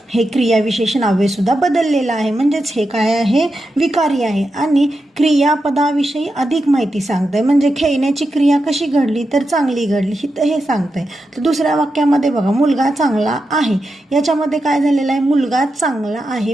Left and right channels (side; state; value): both; normal; correlation 0.88